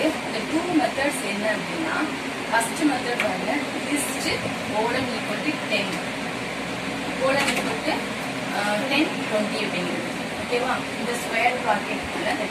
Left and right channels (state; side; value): identical; both; correlation 1.00